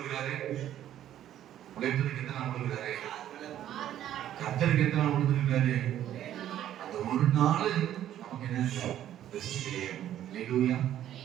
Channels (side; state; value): left; quieter; 11.6 dB